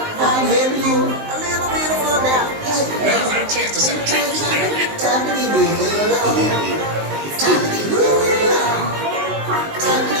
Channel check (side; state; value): left; late; 19 ms